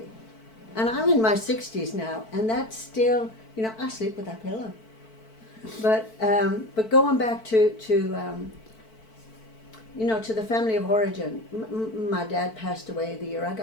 And I'm in my 60s now, and that's still, I sleep with that pillow. But going back to the family of origin, my dad passed away the year I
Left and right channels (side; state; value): right; late; 4.5 ms